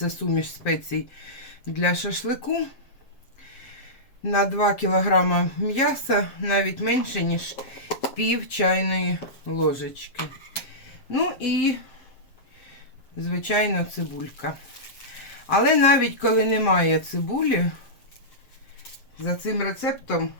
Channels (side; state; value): right; late; 7.5 ms